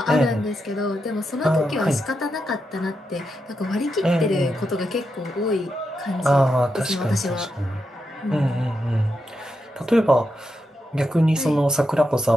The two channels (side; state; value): both; normal; correlation 0.85